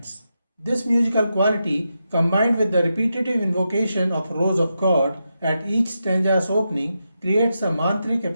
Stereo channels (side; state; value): both; inverted; correlation -0.87